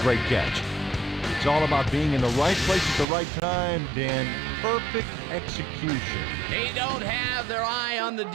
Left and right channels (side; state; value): left; drops out; at 3.1 s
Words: catch. It's all about being in the right place at the right time, Dan. Perfect execution. They don't have their eye on the